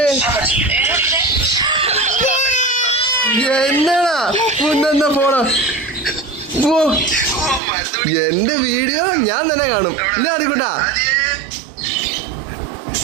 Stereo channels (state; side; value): drops out; left; at 7.6 s